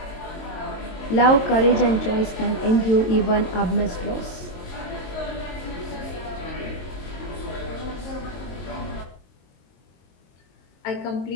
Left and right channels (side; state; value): right; late; 22 ms